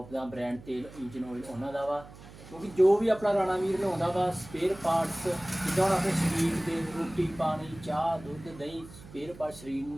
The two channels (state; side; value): noise; right; hum, 18 dB below the sound